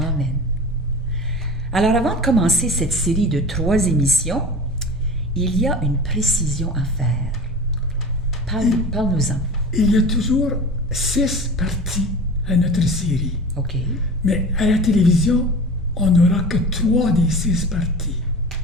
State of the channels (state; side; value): normal; both; correlation 0.35